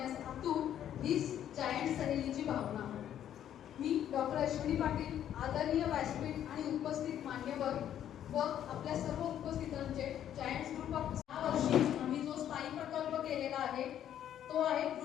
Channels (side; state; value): right; quieter; 10.5 dB